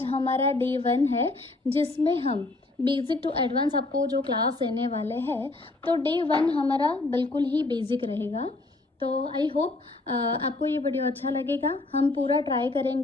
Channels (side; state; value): right; quieter; 3.1 dB